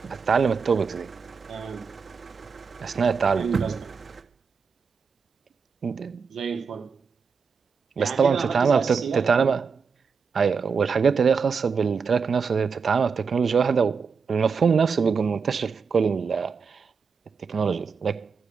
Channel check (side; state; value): left; quieter; 5.5 dB